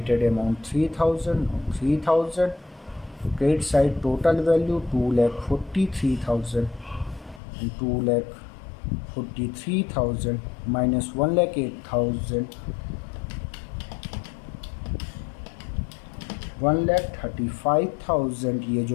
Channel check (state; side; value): drops out; right; at 7.4 s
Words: amount 3,000। Credit side total value 2,43,000 and 2,43,000 minus 1,08,000 1,35,000। ये